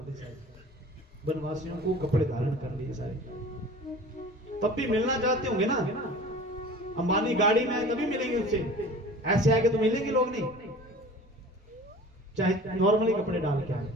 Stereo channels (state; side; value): normal; both; correlation 0.42